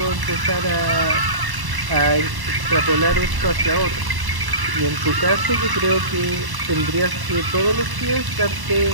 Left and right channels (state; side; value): late; left; 1.0 ms